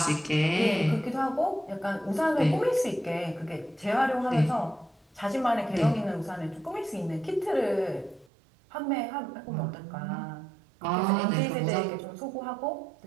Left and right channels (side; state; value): left; drops out; at 8.3 s